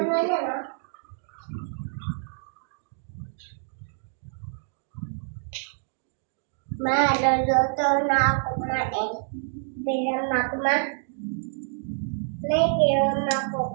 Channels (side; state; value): left; silent; digital silence